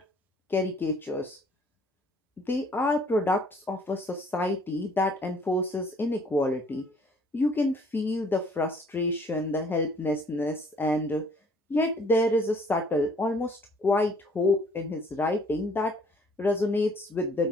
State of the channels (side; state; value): both; normal; correlation 0.59